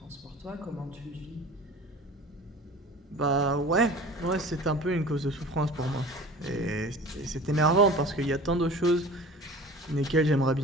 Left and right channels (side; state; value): both; normal; correlation 0.40